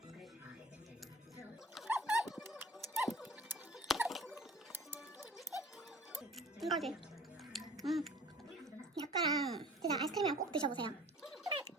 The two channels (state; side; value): normal; both; correlation 0.47